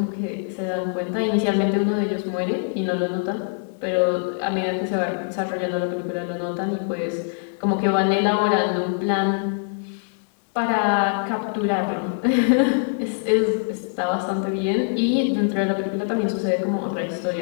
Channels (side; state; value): right; silent; 60 dB below the other